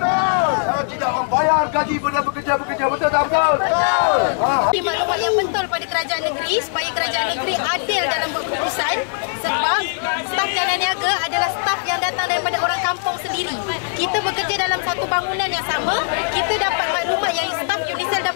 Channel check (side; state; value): right; silent; digital silence